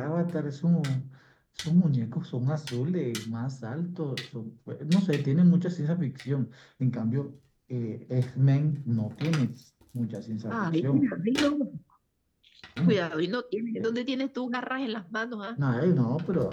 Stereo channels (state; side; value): identical; both; correlation 1.00